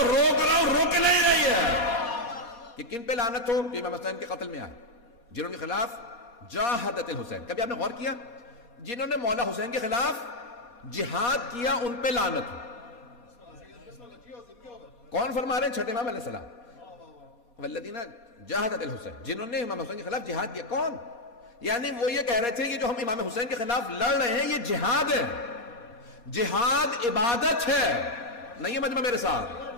روک رہا ہوں، روک نہیں رہی ہے۔ کہ کن پہ لعنت ہو؟ جو امام حسین کے قتل میں آئے، جنہوں کے خلاف جاہدت الحسین، کبھی آپ نے غور کیا جنہوں نے مولا حسین کے خلاف جہاد کیا ان پہ لعنت ہو؟ کون فرما رہے ہیں؟ چھٹے امام علیہ السلام، والذین جاہدت الحسین، جنہوں نے امام حسین کے خلاف جہاد کیا۔ کون؟ یعنی وہ یہ کہہ رہے تھے کہ جو ہم امام حسین کے خلاف لڑ رہے ہیں یہ جہاد ہے، جہاد عبادت ہے، نہیں ہے مجمع میرے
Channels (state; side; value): late; right; 4.2 ms